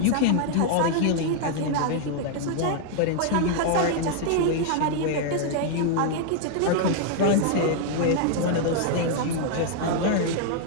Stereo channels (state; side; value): different; both; correlation 0.00